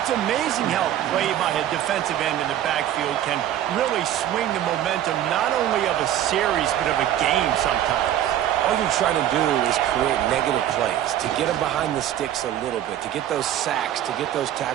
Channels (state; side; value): quieter; left; 11.6 dB